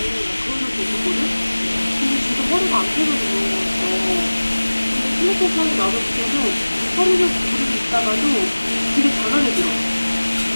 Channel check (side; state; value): both; inverted; correlation -1.00